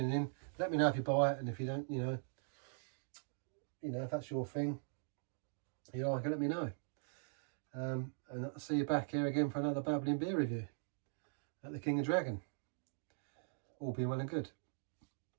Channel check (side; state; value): left; silent; digital silence